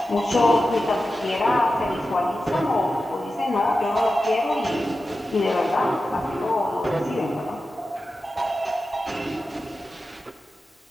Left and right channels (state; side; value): normal; both; correlation 0.92